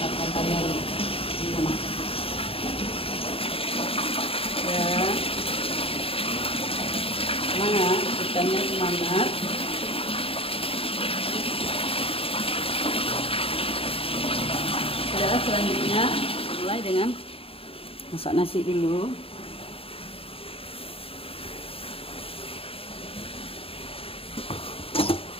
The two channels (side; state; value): right; late; 0.27 ms